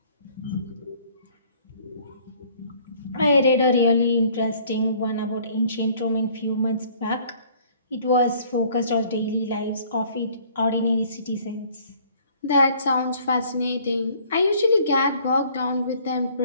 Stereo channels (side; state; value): both; inverted; correlation -0.57